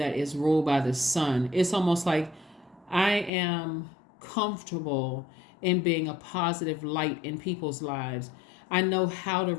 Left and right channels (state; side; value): drops out; right; at 3.3 s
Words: is ruled by the sun. It's almost like I am comfortable in being a positive light in people's lives. I know how to